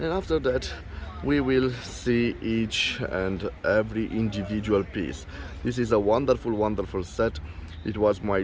after that we will see each and every individual piece. This is a wonderful, wonderful set. It was my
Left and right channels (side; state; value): both; identical; correlation 1.00